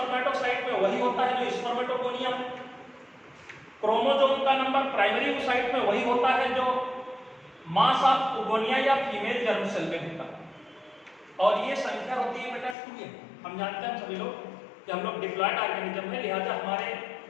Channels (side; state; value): right; drops out; at 12.8 s